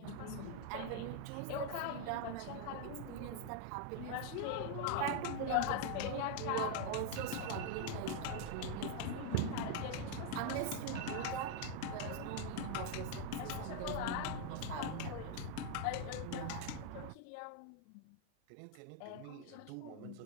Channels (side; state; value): both; different; correlation 0.00